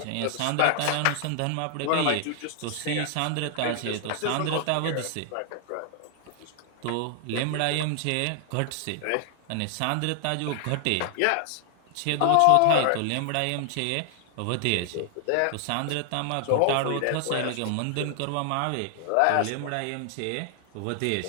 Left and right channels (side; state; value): both; different; correlation 0.00